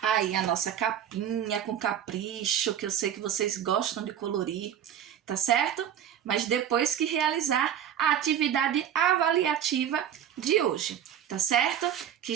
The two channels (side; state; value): left; quieter; 9.7 dB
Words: aí a nossa capinha com capricho, que eu sei que vocês gostam de colorir, tá certo? Mas depois que realizar a atividade avaliativa de hoje, tá certo? Que